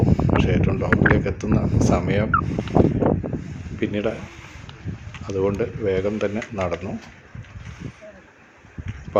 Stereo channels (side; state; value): both; identical; correlation 1.00